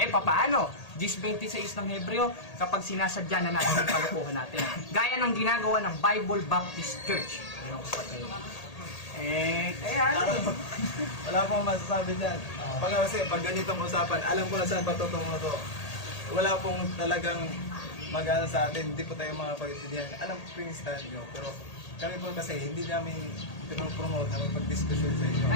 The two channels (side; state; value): right; late; 1.8 ms